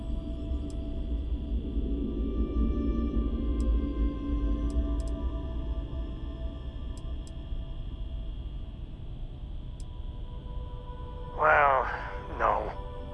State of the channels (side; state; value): both; identical; correlation 1.00